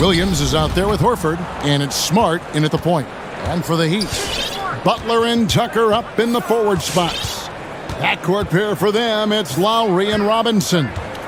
is out there with Horford, and it's Smart in at the point. And for the Heat, Butler and Tucker up in the forward spots. Backcourt pair for them, it's Lowry and Robinson.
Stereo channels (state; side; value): identical; both; correlation 1.00